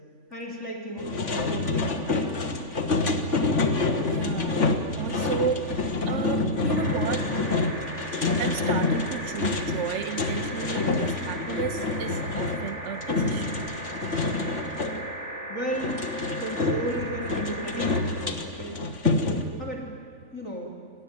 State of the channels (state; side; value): late; left; 3.5 ms